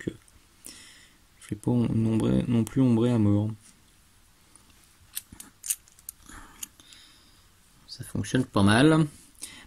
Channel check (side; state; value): both; identical; correlation 1.00